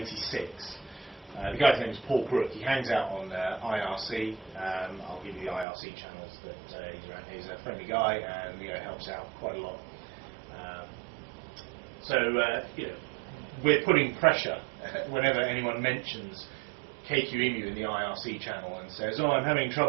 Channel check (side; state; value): left; drops out; at 5.7 s